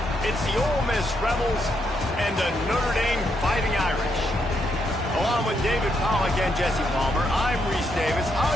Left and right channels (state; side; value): normal; both; correlation 0.78